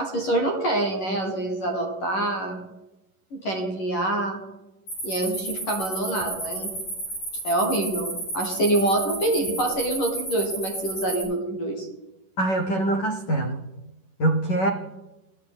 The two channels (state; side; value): late; right; 11 ms